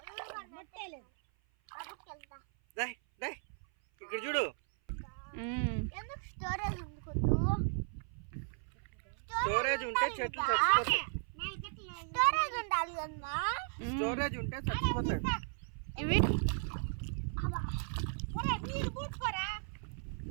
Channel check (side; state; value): left; silent; 54 dB below the other